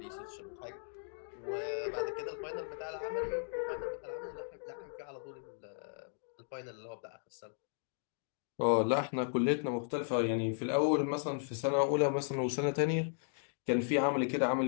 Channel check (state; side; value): silent; right; digital silence